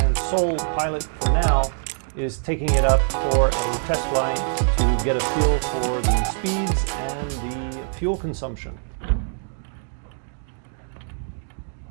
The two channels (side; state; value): left; silent; digital silence